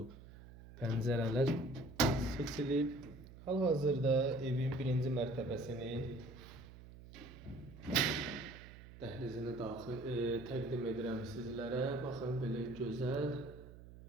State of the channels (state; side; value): noise; right; hum, 17 dB below the sound